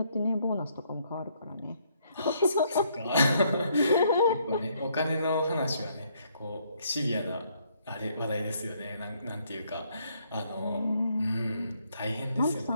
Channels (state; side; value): inverted; both; correlation -0.70